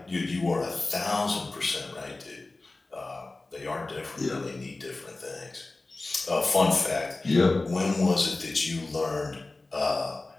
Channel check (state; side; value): quieter; right; 3.2 dB